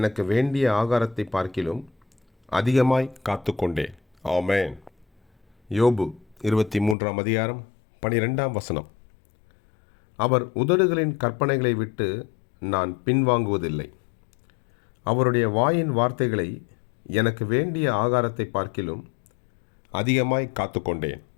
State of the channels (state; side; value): drops out; right; at 7.0 s